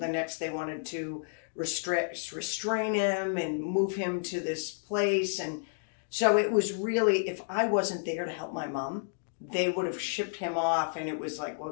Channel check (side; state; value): right; silent; digital silence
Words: next they wanted to restrain him and move him to this place. And so it was really, if I wasn't there to help my mom, they would have shipped him off, and it was like,